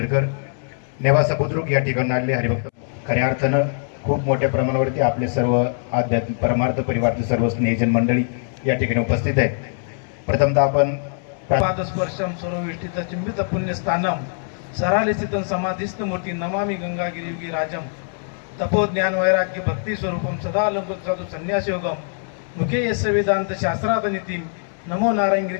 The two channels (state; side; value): silent; right; 64 dB below the other